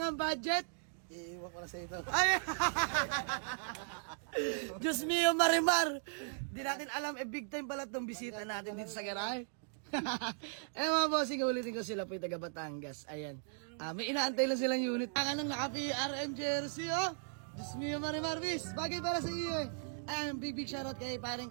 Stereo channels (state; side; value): silent; left; digital silence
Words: budget, Iiwan ko na sa ito. ay! Diyos mio, Marimar! Di natin alam, big time pala itong bisita natin dito sa garahe. Eh mga bossing, ulitin ko sila po yung taga Batangas. Ayan. May inaantay lang silang unit. Ang naka-PRM jersey, oh! Diyos mio, Marimar, bis! Bagay para sa iyo, eh. Ayan, big shoutout kay